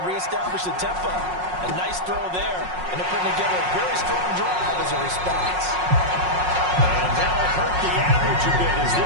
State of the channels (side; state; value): left; late; 5.5 ms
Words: and reestablished the tempo. A nice throw there, and they're putting together a very strong drive as a response. And that'll hurt the average a bit as